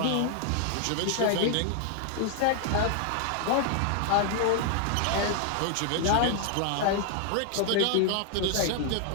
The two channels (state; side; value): different; both; correlation 0.00